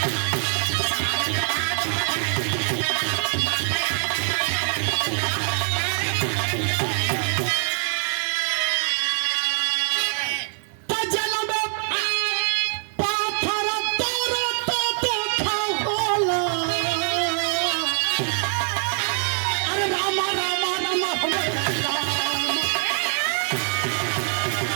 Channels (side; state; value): left; silent; 58 dB below the other